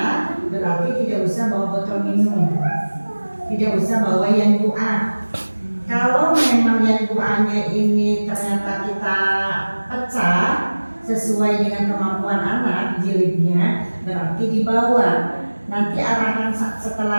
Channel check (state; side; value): inverted; both; correlation -1.00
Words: berarti tidak usah bawa botol minum, tidak usah bawa yang doa. Kalau memang yang doanya ini ternyata kita pecah sesuai dengan kemampuan anak jilidnya, berarti dibawa. Nanti arahan